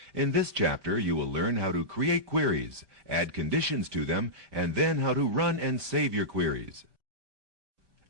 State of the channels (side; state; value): left; late; 5.1 ms